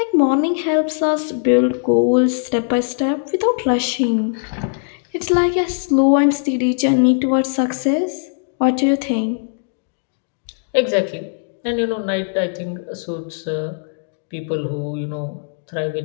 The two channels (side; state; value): right; silent; digital silence